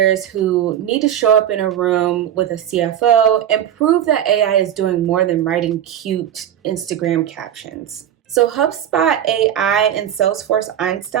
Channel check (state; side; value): quieter; left; 10.4 dB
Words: who need to show up in a room with a CFO and prove that AI is doing more than writing cute Instagram captions. So HubSpot AI and Salesforce